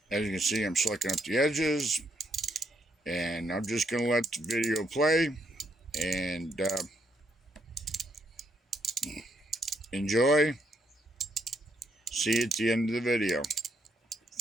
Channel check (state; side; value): normal; both; correlation 0.75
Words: As you can see, I'm slicking up the edges, and I'm just going to let the video play and enjoy. See you at the end of the video.